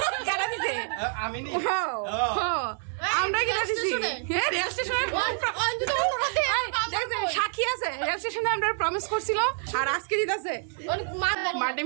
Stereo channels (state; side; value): silent; left; 59 dB below the other